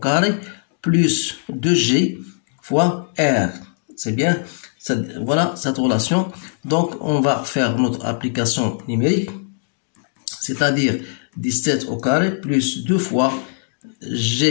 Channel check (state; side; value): silent; right; digital silence